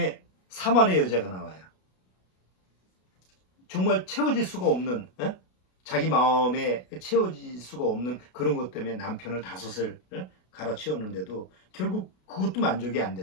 사마리아 여자가 나와요. 정말 채워질 수가 없는, 자기 마음에 채워질 수가 없는 그런 것 때문에 남편을 5을 갈아치웠는데도 결국 그것도 만족이 안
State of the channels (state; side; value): late; right; 33 ms